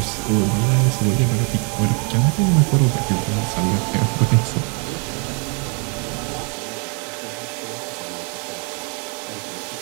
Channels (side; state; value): left; quieter; 35.8 dB